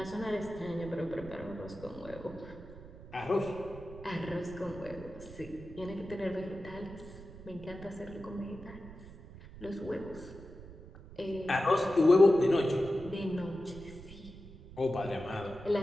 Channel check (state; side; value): noise; right; rumble, 16 dB below the sound